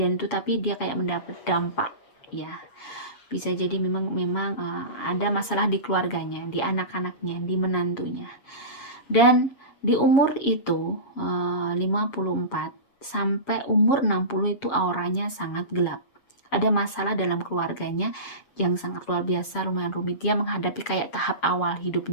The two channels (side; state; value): right; late; 7.4 ms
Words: itu, tapi dia kayak mendapat dampak ya. Bisa jadi memang ada masalah di keluarganya, di anak-anaknya, di menantunya. Dan di umur itu 54 sampai umur 60 itu auranya sangat gelap. Ada masalah dalam keluarganya yang sangat luar biasa, lumayan rumit. Dia menghadapi kayak tahap awal